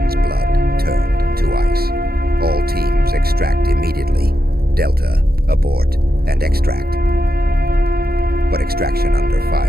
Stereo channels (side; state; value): left; late; 0.45 ms